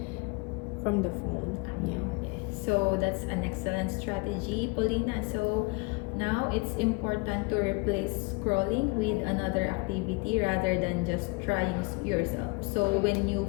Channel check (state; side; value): quieter; right; 28.0 dB